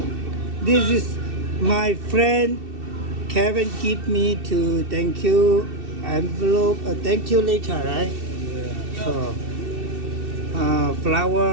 This is my friend Kevin give me to thank you envelope. Thank you later, right? So,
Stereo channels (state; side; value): late; left; 2.7 ms